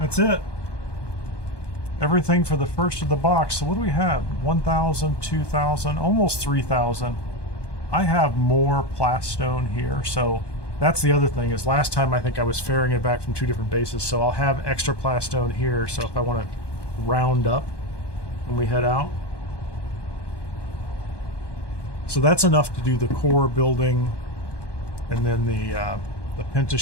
it. Everything for the first of the box. So what do we have? 1,000, 2,000, almost 3,000. I have more plastone here, so that's the other thing, is last time I think I was ferrying it back from 2 different bases, so I'll have extra plastone here, so if I want to round up when we head out. So that's enough to do the core building, and then the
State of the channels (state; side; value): late; right; 1.2 ms